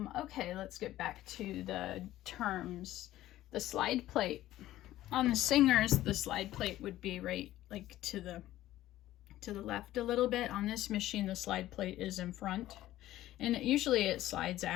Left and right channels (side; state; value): right; quieter; 14.6 dB